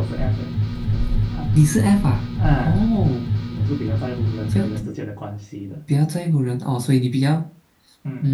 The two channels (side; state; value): both; identical; correlation 1.00